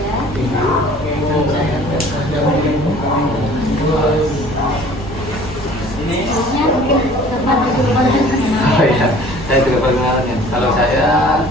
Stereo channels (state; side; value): noise; right; hum, 16 dB below the sound